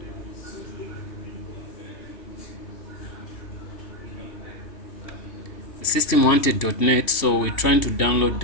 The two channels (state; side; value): late; right; 2.7 ms